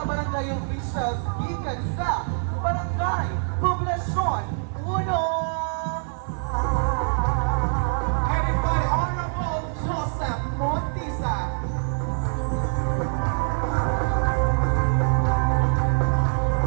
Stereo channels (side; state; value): left; silent; 62 dB below the other